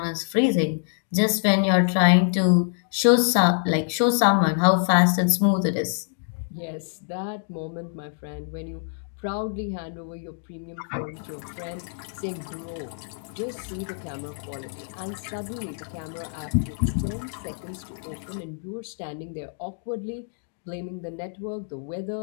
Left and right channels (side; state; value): right; silent; digital silence